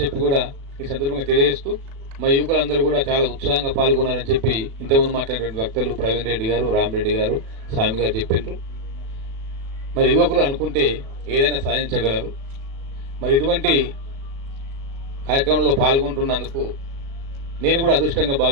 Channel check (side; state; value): left; late; 36 ms